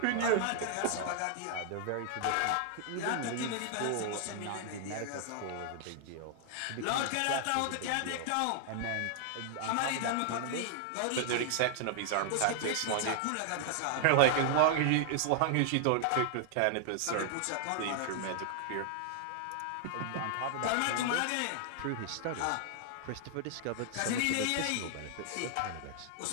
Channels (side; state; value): both; different; correlation 0.00